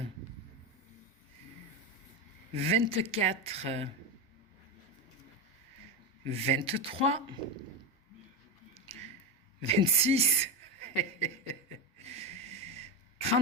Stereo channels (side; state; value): both; normal; correlation 0.15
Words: 24. 23. 26.